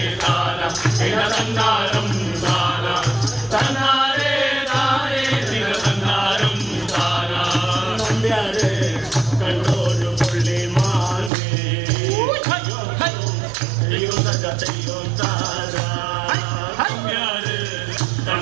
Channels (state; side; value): drops out; left; at 11.3 s